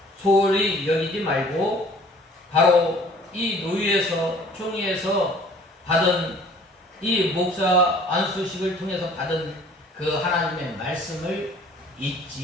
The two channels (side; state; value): both; normal; correlation 0.52